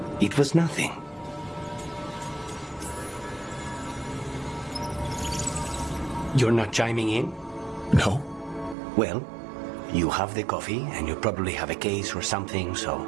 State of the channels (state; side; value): drops out; left; at 8.8 s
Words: It was nothing. You're not chiming in? No. Well, you have the coffee, and you probably have a case or something, so...